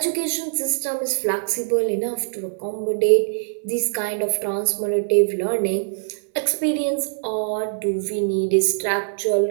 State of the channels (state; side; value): silent; left; digital silence